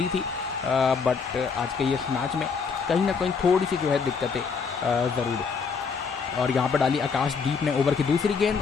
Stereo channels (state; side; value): quieter; right; 5.5 dB